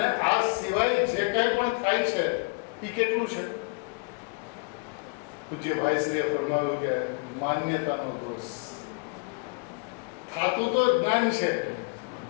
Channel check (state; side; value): quieter; right; 34.6 dB